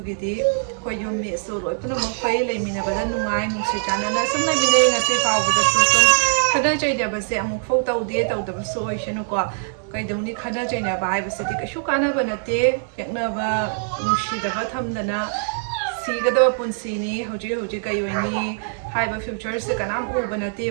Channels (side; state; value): left; silent; digital silence